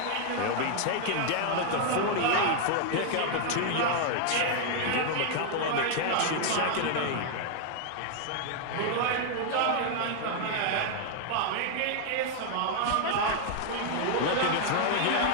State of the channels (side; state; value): both; different; correlation 0.00